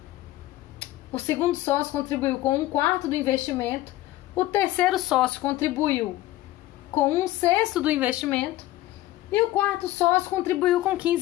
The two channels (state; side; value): quieter; right; 16.0 dB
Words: O segundo sócio contribuiu com 1/4 do investimento. O terceiro sócio contribuiu com 1/6 do investimento. E o quarto sócio contribuiu com